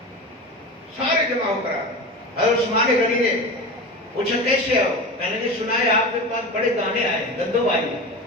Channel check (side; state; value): both; normal; correlation 0.28